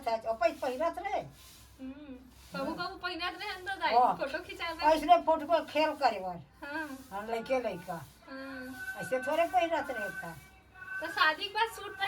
है और पैस पहनत रहे। कबू कबू पहनत रहे अंदर दाई हाँ। फोटो खिंचावे। ऐसने फोटो को खेल करे बार हाँ हम लड़के लड़का हाँ। ऐसे थोड़े पहनत रहे था। तो शादी के बाद सूट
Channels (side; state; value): both; identical; correlation 1.00